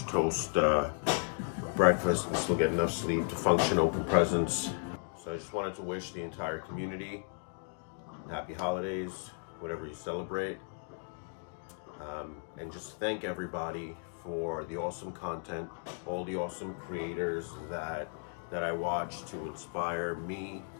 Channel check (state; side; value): silent; right; 55 dB below the other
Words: toast breakfast, and still get enough sleep to function, open presents. So I just wanted to wish the entire community happy holidays, whatever you celebrate, and just thank everybody for the awesome content, all the awesome creators that I watch to inspire me